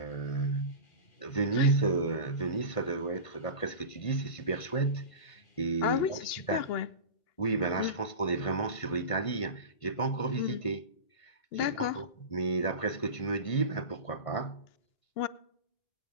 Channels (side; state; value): right; late; 1.5 ms